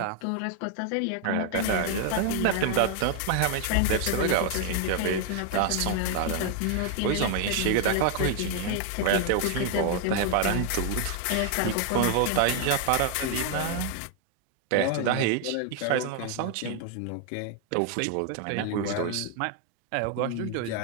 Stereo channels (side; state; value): both; different; correlation 0.00